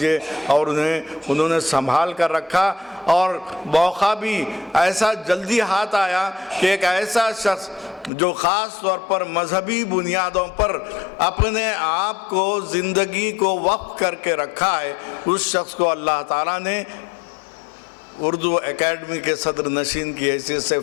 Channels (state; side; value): drops out; right; at 8.1 s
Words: اور انہوں نے سنبھال کر رکھا۔ اور موقع بھی ایسا جلدی ہاتھ آیا کہ ایک ایسا شخص جو خاص طور پر مذہبی بنیادوں پر اپنے آپ کو، زندگی کو وقف کر کے رکھا ہے، اس شخص کو اللہ تعالیٰ نے اردو اکیڈمی کے صدر نشین کی حیثیت سے